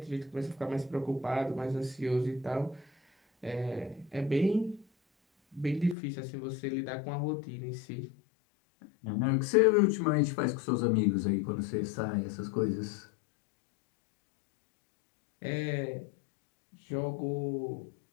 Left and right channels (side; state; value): right; drops out; at 6.0 s